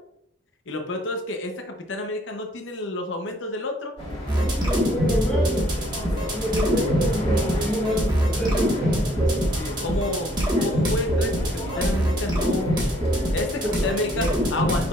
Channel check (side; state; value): both; normal; correlation 0.64